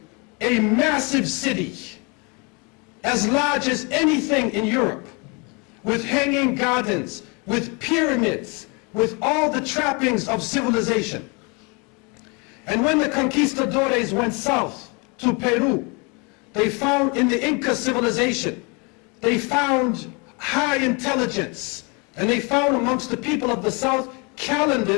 a massive city as large as anything in Europe, with hanging gardens, with pyramids, with all the trappings of civilization. And when the conquistadores went south to Peru, they found in the Inca civilization, they found high intelligence, and they found amongst the people of the south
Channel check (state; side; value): quieter; right; 31.0 dB